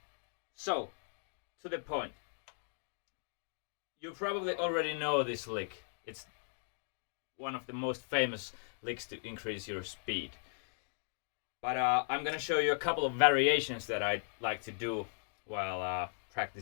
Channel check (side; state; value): right; silent; digital silence